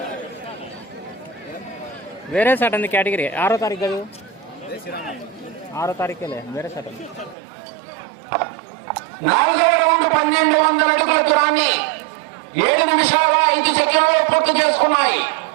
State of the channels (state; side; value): drops out; left; at 7.4 s